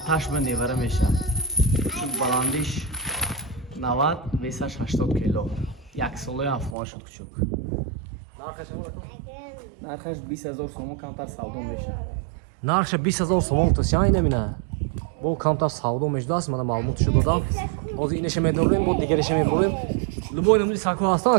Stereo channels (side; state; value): left; drops out; at 6.8 s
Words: ба невара меша баландиш 90 весаш 80 кило як солаи афғон шуд кучук нархаш 20000 сомон камтар савдо меша нархша 20000 сомон тосяй намина бо камтар савдо мешудааст мана маълумотшо додам ҳозир инаша медорем бо дигареша мебурем любой намуди сакҳо ҳастан